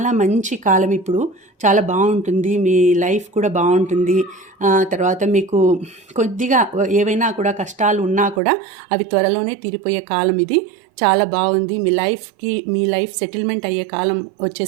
మంచి కాలం ఇప్పుడు. చాలా బాగుంటుంది. మీ లైఫ్ కూడా బాగుంటుంది. తర్వాత మీకు కొద్దిగా ఏవైనా కూడా కష్టాలు ఉన్నా కూడా అవి త్వరలోనే తీరిపోయే కాలం ఇది. చాలా బాగుంది. మీ లైఫ్ సెటిల్మెంట్ అయ్యే కాలం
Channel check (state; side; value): drops out; left; at 8.4 s